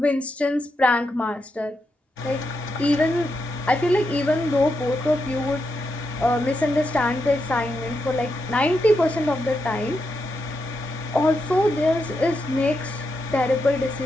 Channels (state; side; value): normal; both; correlation 0.84